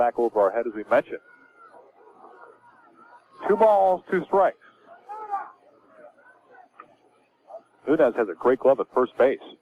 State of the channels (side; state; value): both; identical; correlation 1.00